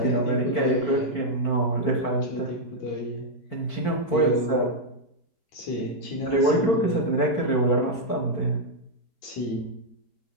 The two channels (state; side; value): late; right; 4.5 ms